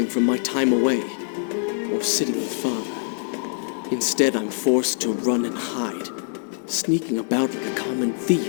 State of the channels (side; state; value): right; silent; digital silence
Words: from my time away. Or of sitting with father. Instead, I'm forced to run and hide, sneaking about like a common